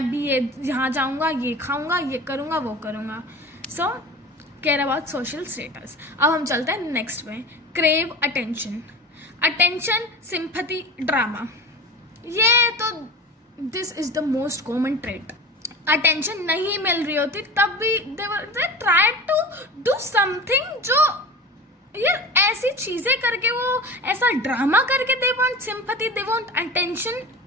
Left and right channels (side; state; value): both; normal; correlation 0.33